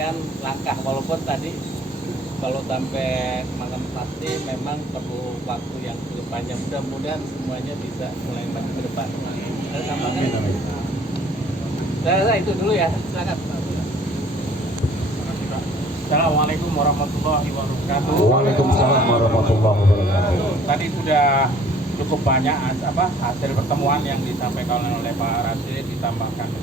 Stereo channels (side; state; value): both; normal; correlation 0.56